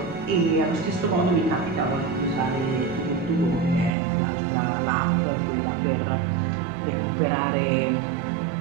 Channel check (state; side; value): drops out; left; at 3.9 s